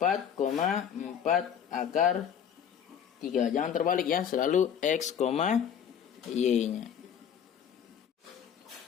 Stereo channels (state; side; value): quieter; right; 8.4 dB